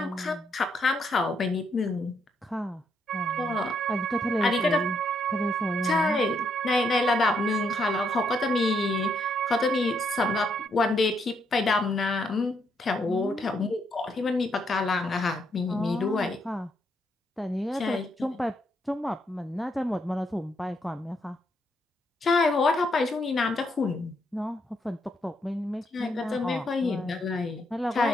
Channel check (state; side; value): normal; both; correlation 0.76